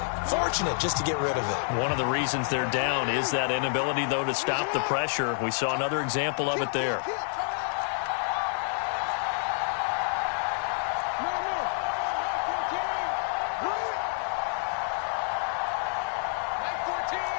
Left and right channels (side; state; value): right; silent; digital silence